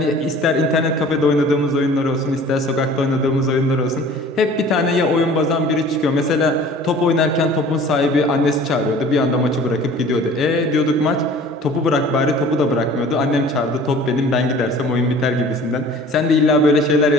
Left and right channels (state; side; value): normal; both; correlation 0.47